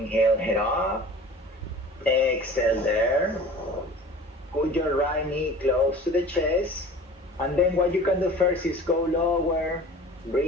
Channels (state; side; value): normal; both; correlation 0.42